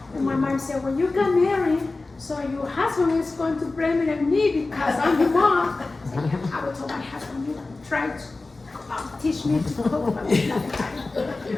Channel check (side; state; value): right; quieter; 3.4 dB